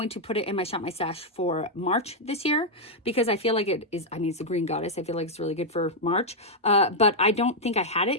to put it in my Shop My Stash for March this year, because I feel like it is, I mean, it's the Green Goddess. I feel like it's really good for March. But I don't think I had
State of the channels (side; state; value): both; normal; correlation -0.02